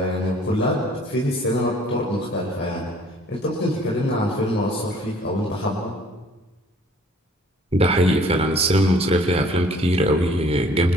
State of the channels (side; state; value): both; normal; correlation 0.56